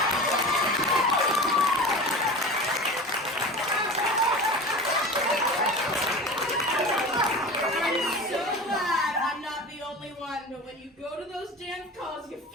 I'm so glad I'm not the only one, but when you go to those dance calls, you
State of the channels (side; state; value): both; normal; correlation 0.32